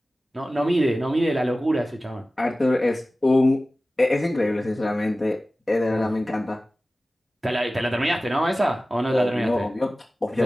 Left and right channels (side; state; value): both; normal; correlation 0.96